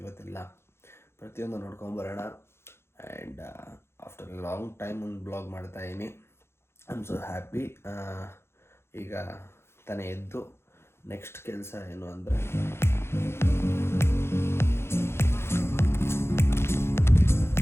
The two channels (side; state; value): right; late; 0.12 ms